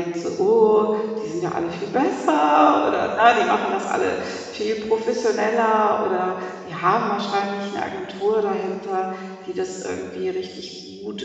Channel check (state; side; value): identical; both; correlation 1.00